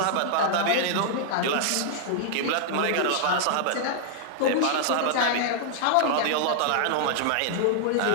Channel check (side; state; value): both; different; correlation -0.01